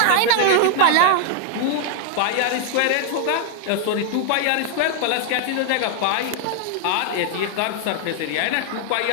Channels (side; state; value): both; different; correlation -0.01